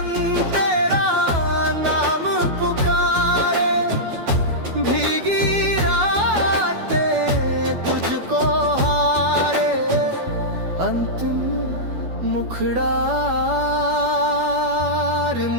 तेरा नाम पुकारे, भीगी रातें तुझको हारे, अंतिम मुखड़ा। रिम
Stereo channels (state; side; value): late; left; 12 ms